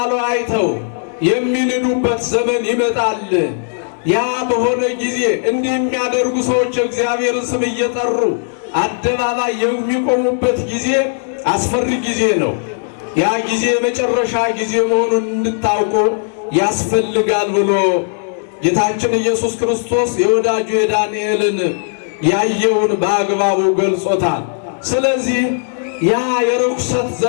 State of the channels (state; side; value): silent; right; digital silence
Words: አይተው የሚንዱበት ዘመን ይመጣል። ያ በሆነ ጊዜ እንዲህ የሚያደርጉ ሰዎች እግዚአብሔርን ስም እየጠሩ አደባባይ የሚቆሙበት ጊዜ አስፈሪ ጊዜ ነው። ያ ጊዜ የመጨረሻ ጊዜ መሆኑን እንድታውቁ ያስፈልጋል ብሎ ጌታችን ኢየሱስ ክርስቶስ የወዳጁ የዳንኤልን ያየውን በአግባቡ ገልጾታል። ስለዚህ ያ የርኩሰት